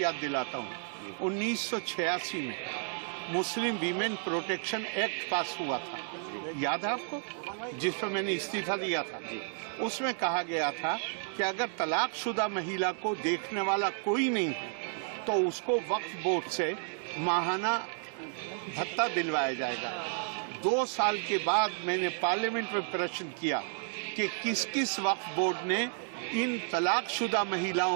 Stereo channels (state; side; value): silent; left; 56 dB below the other